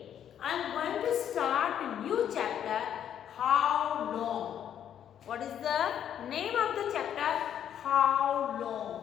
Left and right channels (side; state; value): right; quieter; 9.6 dB